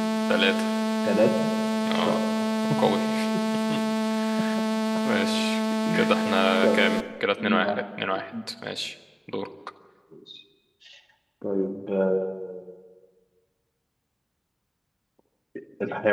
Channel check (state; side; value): identical; both; correlation 1.00